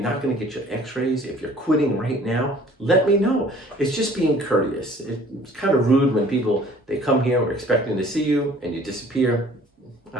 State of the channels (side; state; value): both; normal; correlation 0.53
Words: not going to get your x-rays, if you're quitting right now, let me know. It's just being courteous. It's kind of rude when people, they come here, we're expecting to see you, and you disappear.